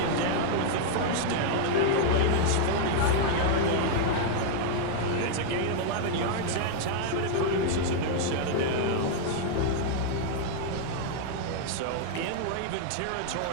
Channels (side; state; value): both; different; correlation 0.00